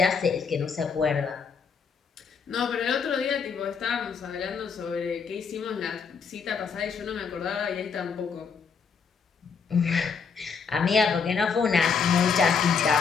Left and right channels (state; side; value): quieter; right; 5.9 dB